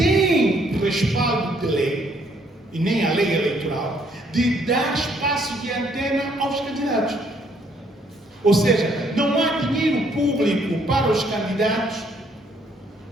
respaldo de lei, e nem a lei eleitoral, de dar espaço de antena aos candidatos. Ou seja, não há dinheiro público para os candidatos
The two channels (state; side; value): normal; both; correlation 0.67